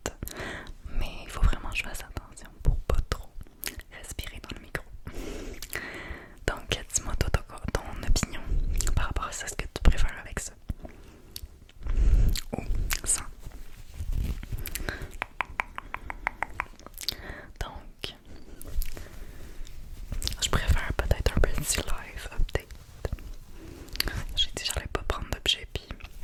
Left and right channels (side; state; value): both; identical; correlation 1.00